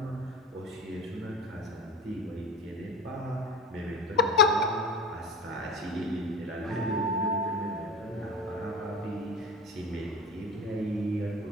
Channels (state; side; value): normal; both; correlation 0.31